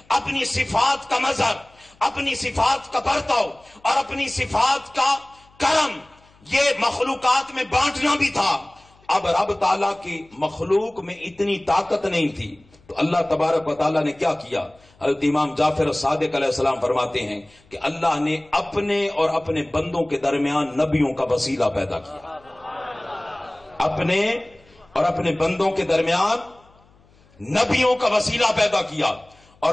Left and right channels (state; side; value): noise; left; hum, 30 dB below the sound